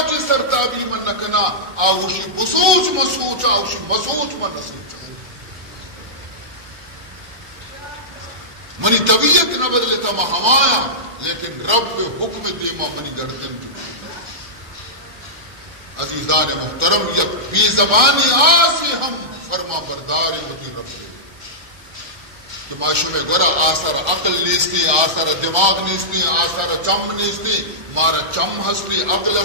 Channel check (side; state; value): left; late; 1.4 ms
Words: چی سرتابی من نکنا آوشی بسوچ مسوچا آوشی مسوچ من نسوچا منی طبیعت نہ بدلتا ما ہمایا لیکن رب حکم دیما منی گردن دکھتا عزیزان محترم یک بی زبانی آسی ہم فرما برداری ہوتی رب دے کہ معاشو میں گورا آثار عقل نیستی آثار دماغ نیستی آثار چم نیستی مارا چم ہستی عقل